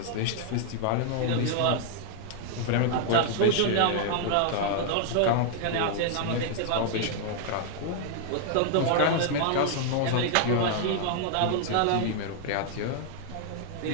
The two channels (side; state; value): both; different; correlation 0.00